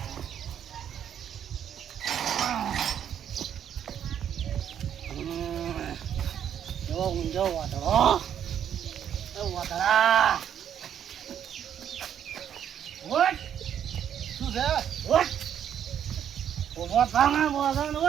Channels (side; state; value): left; quieter; 9.3 dB